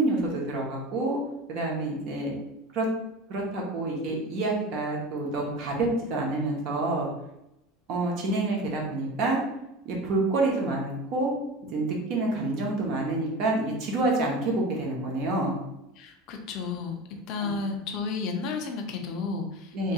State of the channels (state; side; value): normal; both; correlation 0.32